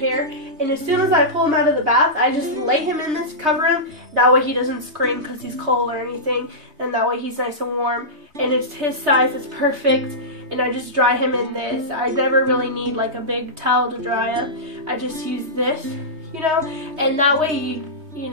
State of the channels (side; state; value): left; late; 3.2 ms